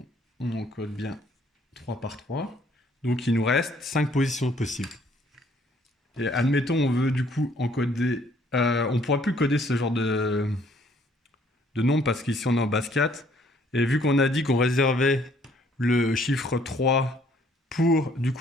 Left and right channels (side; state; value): both; normal; correlation 0.63